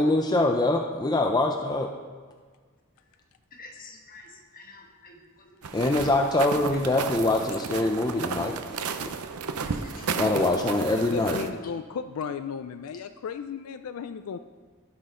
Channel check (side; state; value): both; normal; correlation 0.50